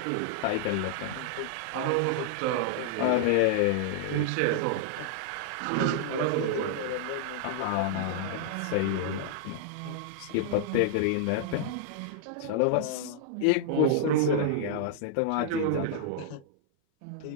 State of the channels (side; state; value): both; different; correlation -0.01